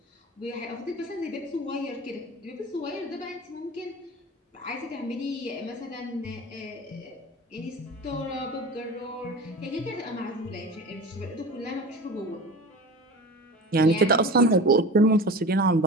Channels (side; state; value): both; normal; correlation 0.34